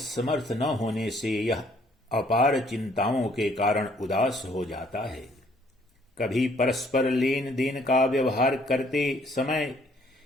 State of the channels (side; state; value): both; normal; correlation 0.63